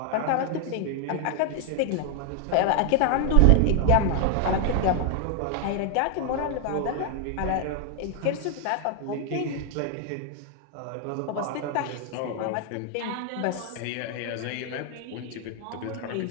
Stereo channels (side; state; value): both; different; correlation 0.00